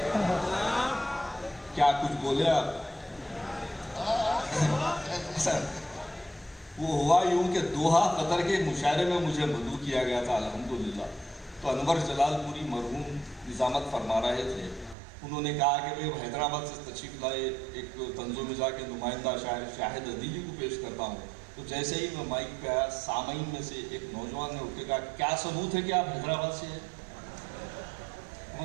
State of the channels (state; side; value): drops out; left; at 15.0 s